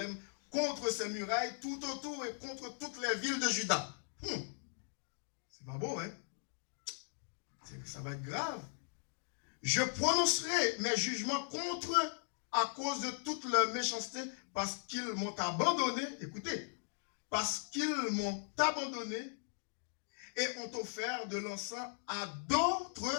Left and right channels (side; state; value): right; silent; digital silence